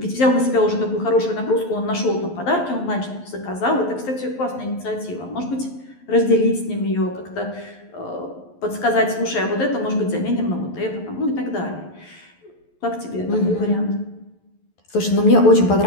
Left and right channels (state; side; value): late; right; 11 ms